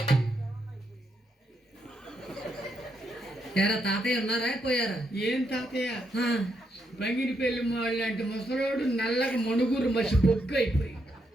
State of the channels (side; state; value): both; normal; correlation 0.79